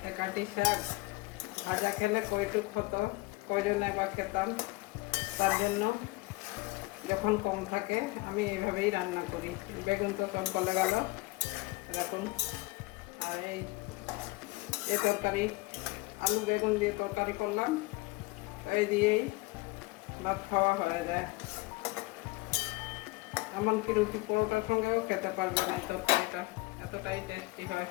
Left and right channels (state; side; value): quieter; right; 22.7 dB